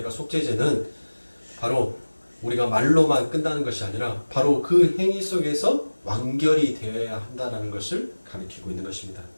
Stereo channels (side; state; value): both; inverted; correlation -1.00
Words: 속죄제는 바로 우리가 말로만 끝나는 것이 아니라 바로 그 행위 속에서 완결이 되어야 한다는 것을 가리키고 있는 것입니다.